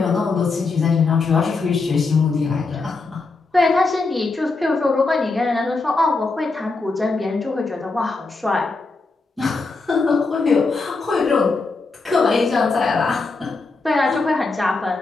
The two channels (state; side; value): quieter; right; 3.8 dB